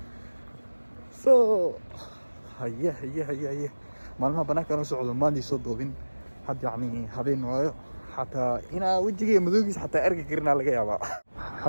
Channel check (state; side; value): inverted; both; correlation -1.00